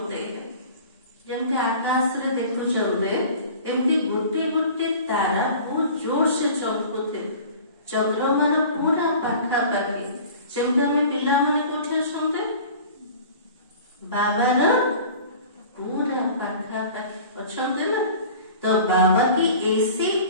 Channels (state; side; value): inverted; both; correlation -0.42